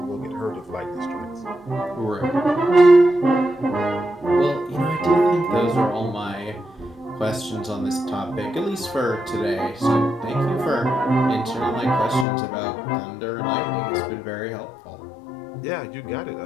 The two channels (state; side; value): drops out; right; at 12.2 s